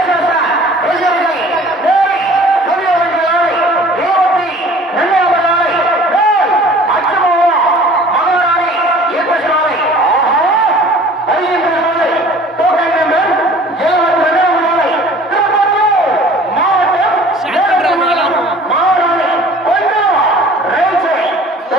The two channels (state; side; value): normal; both; correlation 0.48